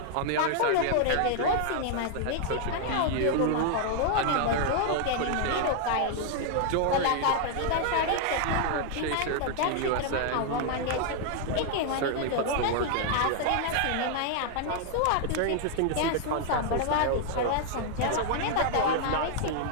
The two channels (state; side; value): different; both; correlation 0.00